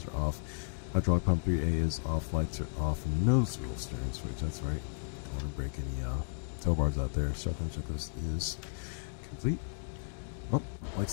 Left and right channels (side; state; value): right; silent; digital silence